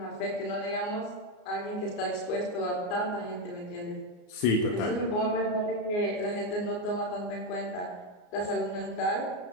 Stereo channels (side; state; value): right; late; 34 ms